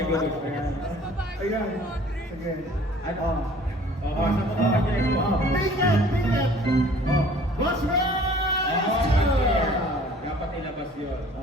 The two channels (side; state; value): both; normal; correlation 0.51